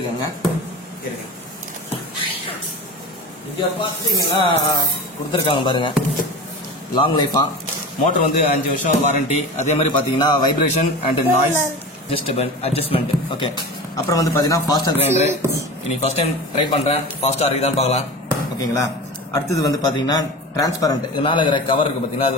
இங்க பாத்தீங்கன்னா கொடுத்துருக்காங்க பாருங்க, லாங் லைஃபா. மோட்டர் வந்து 5 வருஷம் வாரண்டி. அதே மாதிரி பாத்தீங்கன்னா vibration and noise adjustment. Okay, அப்புறம் வந்து பாத்தீங்கன்னா ஃபாஸ்டர் கிரைண்டர். இன்னைக்கு ஃபர்ஸ்ட் டைம் ட்ரை பண்றேன். ஃபாஸ்டா இருக்குதான்னு பார்க்கலாம். ஓகேங்களா? அடுத்தது வந்து பாத்தீங்கன்னா டிரான்ஸ்பரண்ட். இதனால இருக்கிற கவர் இருக்கு பாத்தீங்கன்னா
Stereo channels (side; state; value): both; normal; correlation 0.31